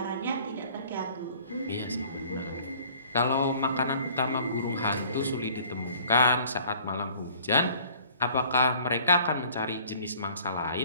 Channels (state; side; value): inverted; both; correlation -0.53